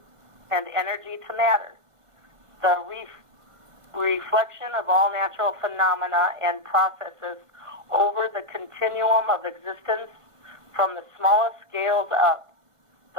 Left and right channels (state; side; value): late; left; 1.5 ms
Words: and energy to matter. The reflection of all natural phenomena and processes over the continuum of existence from the smallest scales up,